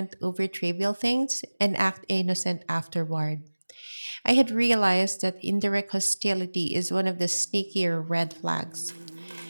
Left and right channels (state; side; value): inverted; both; correlation -1.00